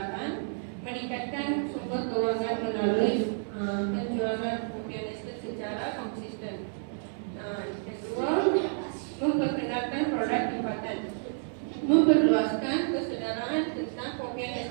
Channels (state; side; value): silent; left; digital silence